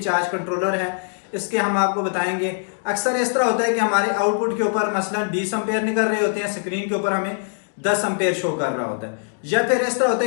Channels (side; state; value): right; silent; digital silence